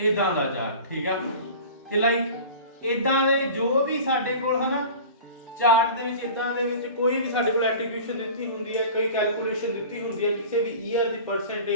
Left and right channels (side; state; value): both; inverted; correlation -0.38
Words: ਦਾ ਚਾਰਟ, ਠੀਕ ਆ। ਤੇ ਲਾਈਕ ਇਦਾਂ ਦੇ ਜੋ ਵੀ ਸਾਡੇ ਕੋਲ ਹੈ ਨਾ ਚਾਰਟ ਦੇ ਵਿੱਚ, ਇਦਾਂ ਦੇ ਵਿੱਚ ਕੋਈ ਵੀ ਸਾਡੇ ਕੋਲ ਐਟਰੀਬਿਊਸ਼ਨ ਦਿੱਤੀ ਹੁੰਦੀ ਹੈ, ਕੋਈ ਕੈਲਕੂਲੇਸ਼ਨ ਦਿੱਤੀ ਹੁੰਦੀ ਹੈ ਕਿਸੇ ਵੀ ਈਅਰ ਦੀ